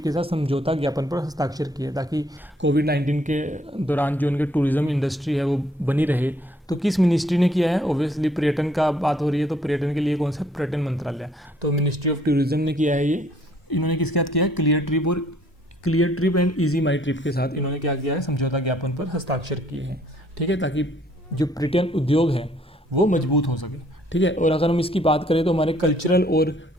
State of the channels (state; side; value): normal; both; correlation 0.63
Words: के साथ समझौता ज्ञापन पर हस्ताक्षर किए, ताकि कोविड-19 के दौरान जो उनके टूरिज्म इंडस्ट्री है वो बनी रहे। तो किस मिनिस्ट्री ने किया है? ऑब्वियसली पर्यटन का बात हो रही है तो पर्यटन के लिए कौन सा? पर्यटन मंत्रालय। तो मिनिस्ट्री ऑफ टूरिज्म ने किया है ये। इन्होंने किसके साथ किया है? Clear trip and easy my trip के साथ इन्होंने क्या किया है? समझौता ज्ञापन पर हस्ताक्षर किए हैं। ठीक है, ताकि जो पर्यटन उद्योग है वो मजबूत हो सके। ठीक है, और अगर हम इसकी बात करें तो हमारे कल्चरल और